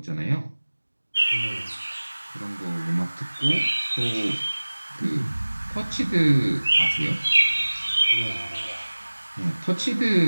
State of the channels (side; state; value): both; inverted; correlation -1.00